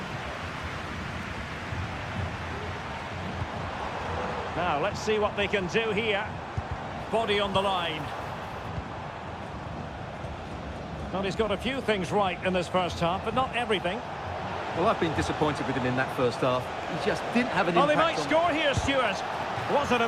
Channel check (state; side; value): identical; both; correlation 1.00